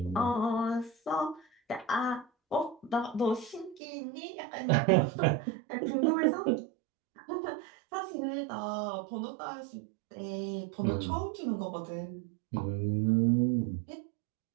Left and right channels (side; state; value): left; drops out; at 3.8 s